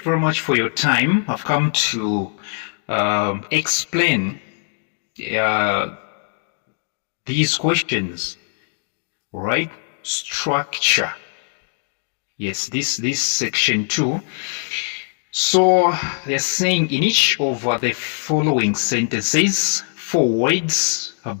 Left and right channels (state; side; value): silent; right; 65 dB below the other